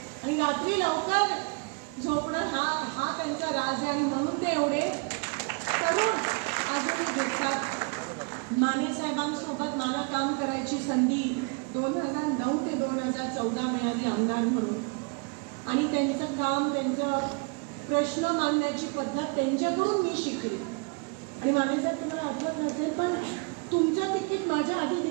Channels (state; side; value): quieter; left; 33.4 dB